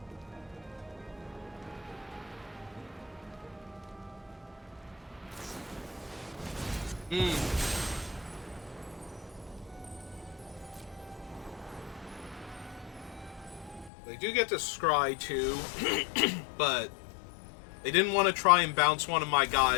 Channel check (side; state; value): right; drops out; at 13.9 s